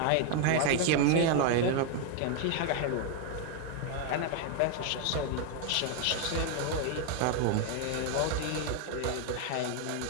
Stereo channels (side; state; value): both; different; correlation 0.01